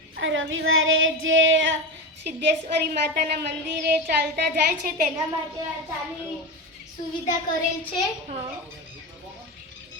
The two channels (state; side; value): normal; both; correlation 0.20